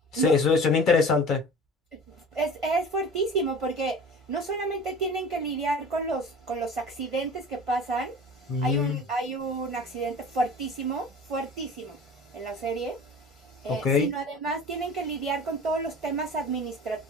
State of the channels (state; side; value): normal; both; correlation 0.40